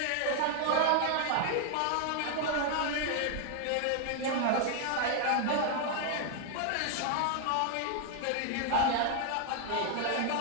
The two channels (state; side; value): different; both; correlation 0.00